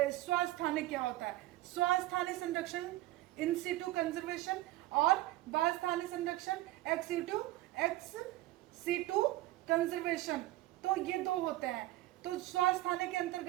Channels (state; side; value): quieter; left; 16.9 dB